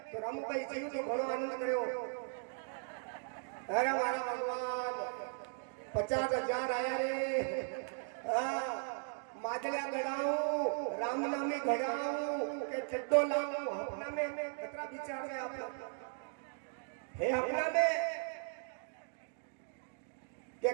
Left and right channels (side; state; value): left; silent; 53 dB below the other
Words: तो रामू भाई चाहिए तो घणो आनंद करो। अरे हमारा भगवान 50,000 आया रे। माजलिया गड़ाऊ राम नामी घड़ाऊ के चड्डो लाऊ। अपना में कितना विचार है आप हे अपना में के